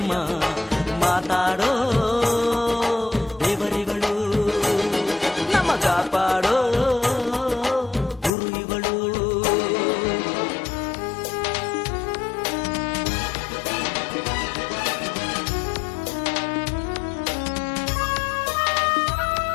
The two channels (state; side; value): drops out; right; at 8.3 s